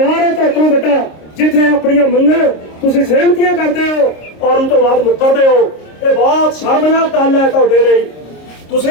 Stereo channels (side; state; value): right; late; 26 ms